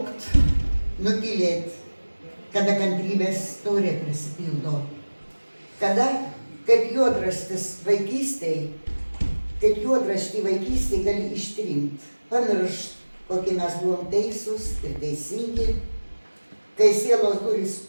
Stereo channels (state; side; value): inverted; both; correlation -1.00